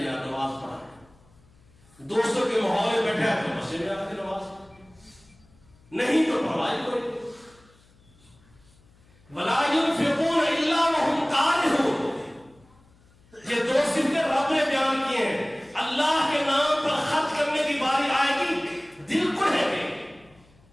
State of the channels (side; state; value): left; noise; hum, 30 dB below the sound